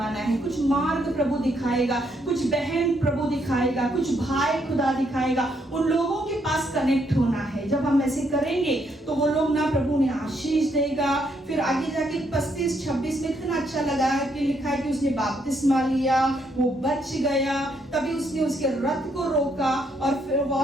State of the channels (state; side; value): normal; both; correlation 0.74